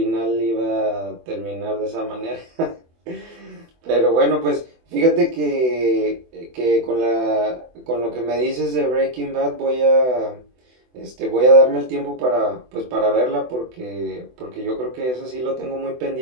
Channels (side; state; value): left; late; 24 ms